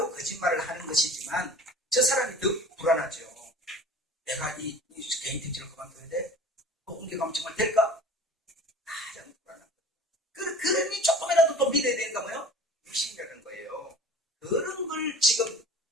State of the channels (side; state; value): both; normal; correlation 0.44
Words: 거짓말을 하는 것이지만 저 사람이 더 불안하죠. 내가 이 개인 택지를 그만둬야 돼? 옮겨가면 정말 될까? 가장 불안한 거예요. 그러니 조금이라도 또 믿어야 되는가 뭐요? 육신이라는 거예요. 그런 걸 지금